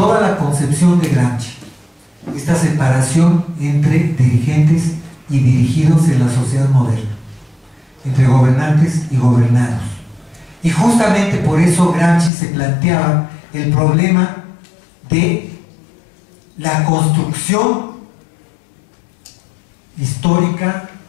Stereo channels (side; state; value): right; drops out; at 12.3 s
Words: la concepción de Gramsci, esta separación entre dirigentes y dirigidos en la sociedad moderna, entre gobernantes y gobernados. Y justamente por eso Gramsci se planteaba el problema de la construcción histórica,